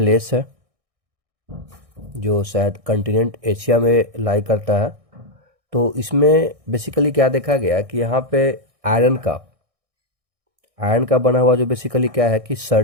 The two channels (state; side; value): late; left; 1.6 ms